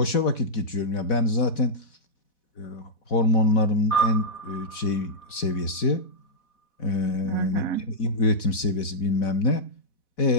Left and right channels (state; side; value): late; right; 4.1 ms